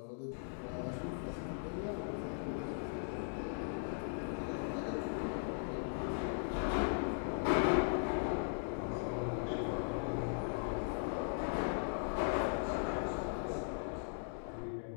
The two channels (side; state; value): right; silent; digital silence